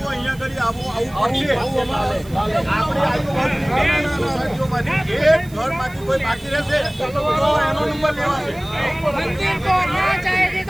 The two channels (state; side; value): noise; right; hiss, 23 dB below the sound